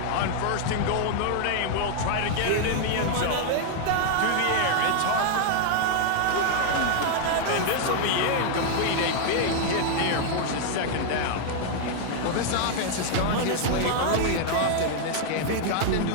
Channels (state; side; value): different; both; correlation 0.00